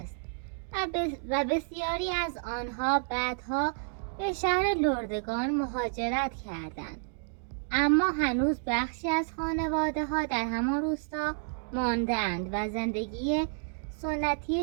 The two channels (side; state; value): left; silent; digital silence